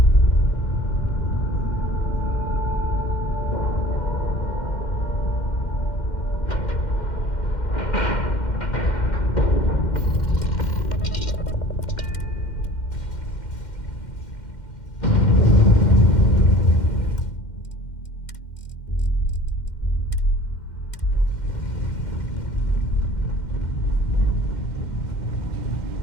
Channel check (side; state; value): right; late; 2.1 ms